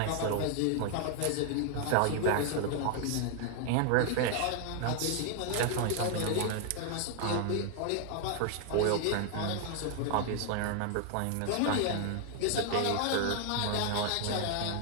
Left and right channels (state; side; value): different; both; correlation 0.00